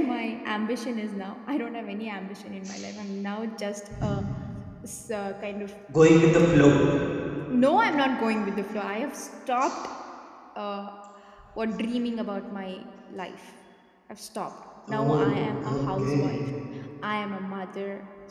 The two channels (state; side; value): identical; both; correlation 1.00